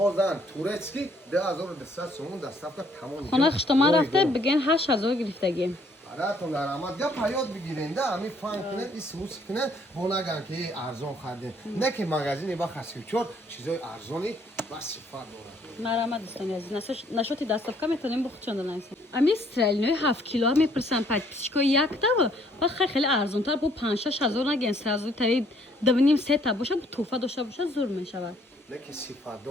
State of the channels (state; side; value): normal; both; correlation 0.64